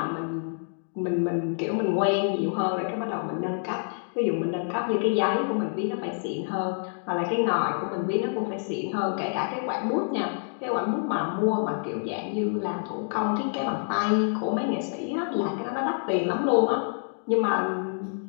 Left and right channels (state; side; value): silent; right; digital silence